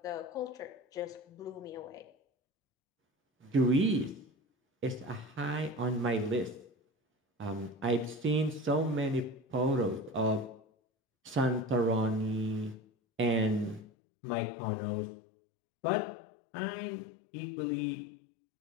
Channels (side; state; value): right; drops out; at 13.9 s